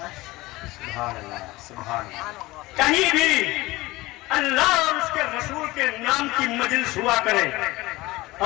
کہیں بھی اللہ اور اس کے رسول کے نام کی مجلس ہوا کرے،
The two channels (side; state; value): right; quieter; 20.0 dB